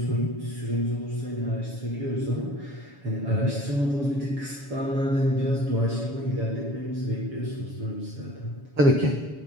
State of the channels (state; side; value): late; left; 7.1 ms